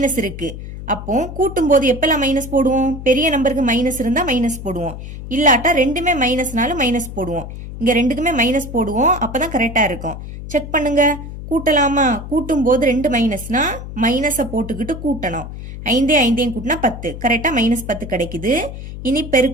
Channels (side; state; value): left; noise; hum, 10 dB below the sound